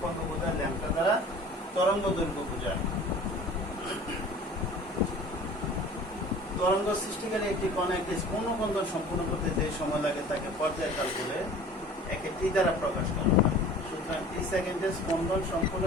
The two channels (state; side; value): normal; both; correlation 0.44